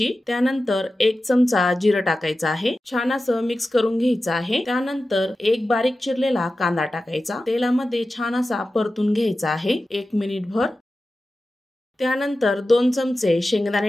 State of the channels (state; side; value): normal; both; correlation 0.94